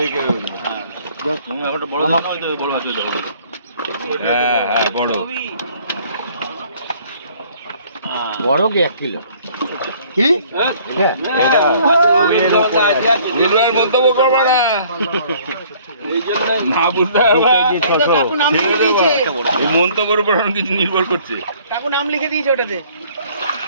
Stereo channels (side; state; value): both; inverted; correlation -0.57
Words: একটা বড় দাম হয় তো, বড় আছে তো। হ্যাঁ হ্যাঁ বড় বড় কি 1 কিলো কি? এটা নির্ভর মন্তব্য করবা না, না বুঝতে পারবা। এই মন্তব্যের উপর কিছু নির্ভর করছে। কাকু নাম লিখে দিয়েছে ওটাতে।